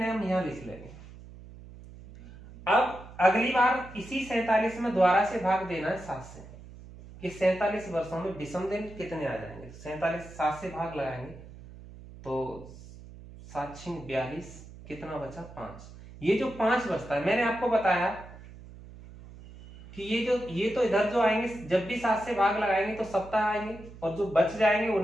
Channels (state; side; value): noise; right; hum, 17 dB below the sound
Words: हम यहां लिख लेंगे। अब अगली बार इसी 47 में दोबारा से भाग देना है 7 से कि 47 वर्षों में विषम दिन कितने आ जाएंगे। 47 7 से भाग लगाएंगे तो 7 6 42, कितना बचा 5। ये जो 5 बचता है, मैंने आपको बताया कि ये तो इधर जो आएंगे जब भी 7 से भाग लगाएंगे तो सप्ताह आएंगे, और जो बच जाएंगे